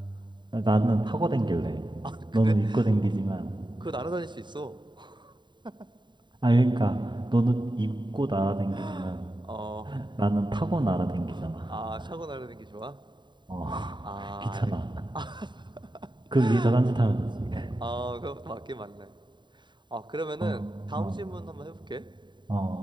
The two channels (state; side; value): late; left; 0.22 ms